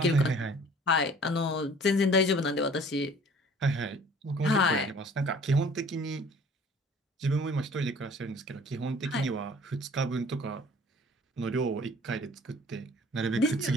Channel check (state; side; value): normal; both; correlation 0.51